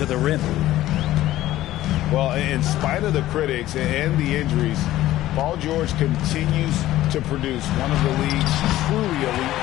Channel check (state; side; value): quieter; right; 14.8 dB